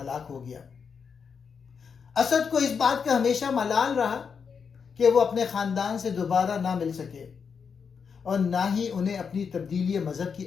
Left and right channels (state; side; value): quieter; right; 6.2 dB